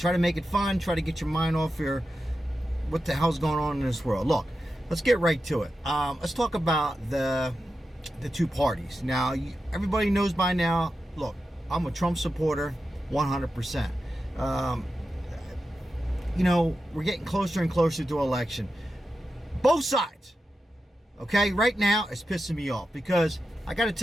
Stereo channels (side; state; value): both; normal; correlation 0.90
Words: to make it fun, try to get your mind off your what the hell's going on in this world. Look, let's get right to it. Let's talk about the two parties. Now, everybody knows by now, look, I'm a Trump supporter, 100%. We're getting closer and closer to election. Both sides. Okay, right now it's pissing me off because I got to